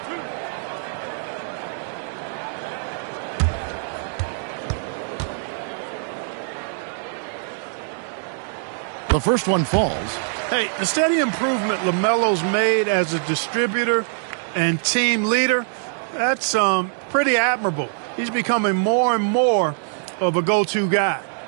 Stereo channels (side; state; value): left; silent; digital silence